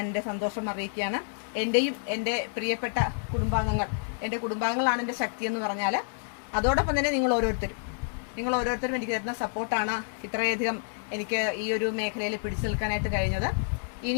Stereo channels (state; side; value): silent; right; digital silence